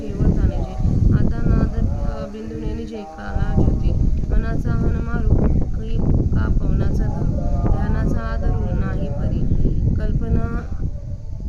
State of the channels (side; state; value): both; identical; correlation 1.00